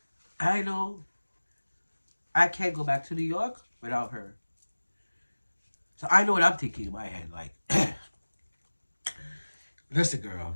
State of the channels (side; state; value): both; inverted; correlation -1.00